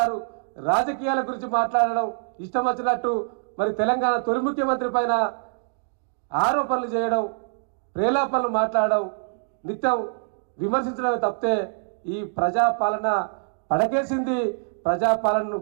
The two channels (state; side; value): silent; left; digital silence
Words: రాజకీయాల గురించి మాట్లాడడం ఇష్టం వచ్చినట్టు మరి తెలంగాణ తొలి ముఖ్యమంత్రి పైన ఆరోపణలు చేయడం, ప్రేలాపనలు మాట్లాడడం, నిత్యం విమర్శించడమే తప్పితే ఈ ప్రజాపాలన పడకేసింది, ప్రజాపాలనను